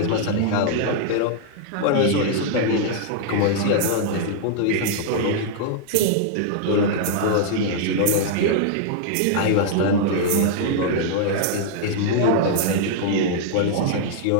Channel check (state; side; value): different; both; correlation -0.01